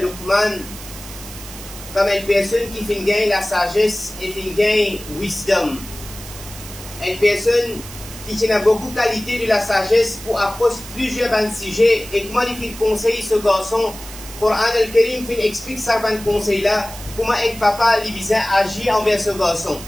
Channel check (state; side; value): noise; right; hiss, 14 dB below the sound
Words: comme une personne qui fait gagner la sagesse et fait gagner wisdom. Une personne qui a beaucoup de qualité de la sagesse pour approcher plusieurs sujets. Et comment il fait conseiller ce garçon, le Coran al-Karim explique ça dans le conseil là. Comment un papa libyen agit envers ce garçon.